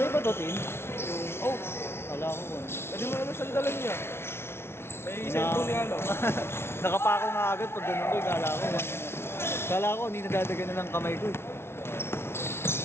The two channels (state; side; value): late; right; 0.12 ms